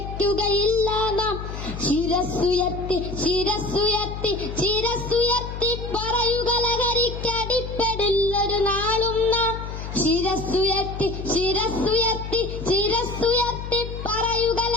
നാം. ശിരസ്സുയർത്തി ശിരസ്സുയർത്തി ശിരസ്സുയർത്തി പറയുക ലഹരിക്കടിപ്പെടില്ല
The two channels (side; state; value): left; noise; hum, 8 dB below the sound